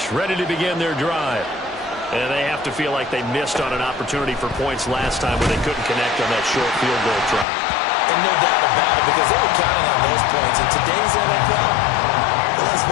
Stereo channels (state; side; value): drops out; right; at 7.5 s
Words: ready to begin their drive. And they have to feel like they missed on an opportunity for points last time when they couldn't connect on that short field goal try. And no doubt about it, because they were counting on those points. In today's NFL, let's